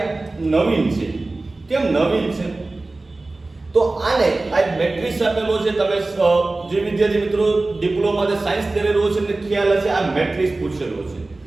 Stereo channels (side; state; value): left; quieter; 3.1 dB